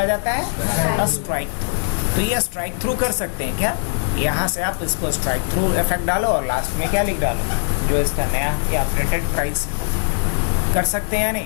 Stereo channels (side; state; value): right; silent; 65 dB below the other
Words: जाता है, स्ट्राइक थ्रू। तो ये स्ट्राइक थ्रू कर सकते हैं क्या, यहाँ से आप इसको स्ट्राइक थ्रू इफेक्ट डालो और लास्ट में क्या लिख डालो, जो इसका नया या अपडेटेड प्राइस। कर सकते हैं या